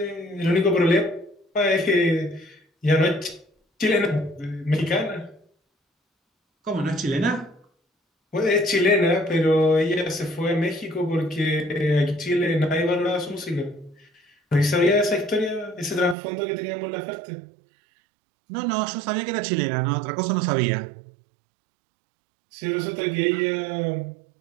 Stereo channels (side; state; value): left; drops out; at 16.2 s